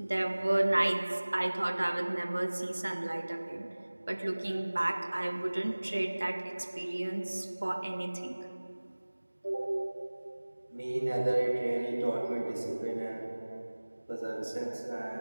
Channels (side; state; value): both; inverted; correlation -1.00